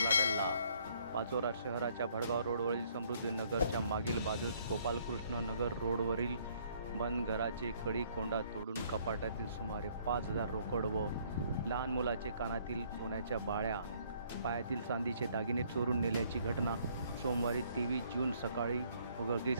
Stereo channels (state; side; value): inverted; both; correlation -0.64